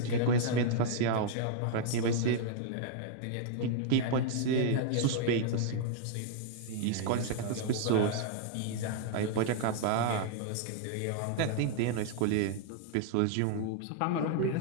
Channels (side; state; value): both; different; correlation -0.01